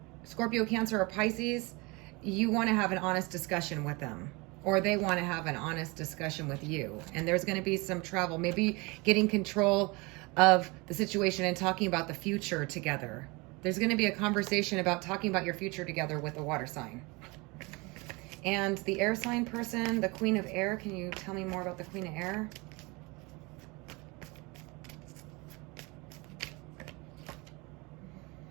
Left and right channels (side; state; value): left; quieter; 26.2 dB